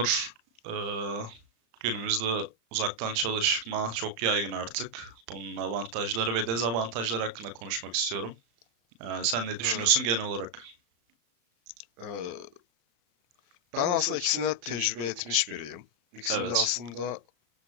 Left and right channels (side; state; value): left; late; 35 ms